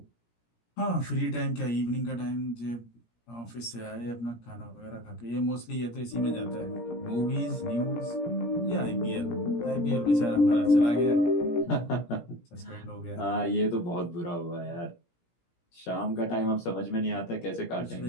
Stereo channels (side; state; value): right; late; 17 ms